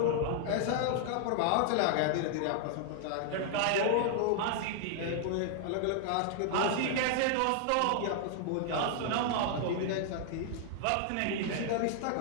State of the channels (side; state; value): both; different; correlation 0.00